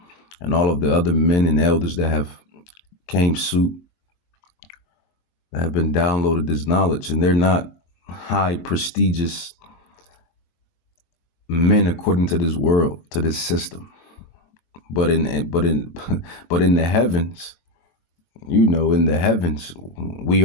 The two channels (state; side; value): late; right; 23 ms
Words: and all of the other men and elders that have came suit, that have been downloaded this knowledge, and they're not high prestigious men according to this world, to this system. But but in the heavens, in the heavens, we